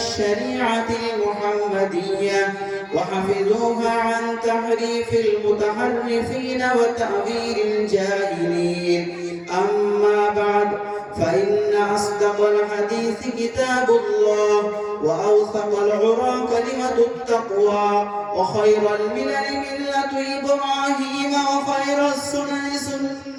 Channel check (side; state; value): both; identical; correlation 1.00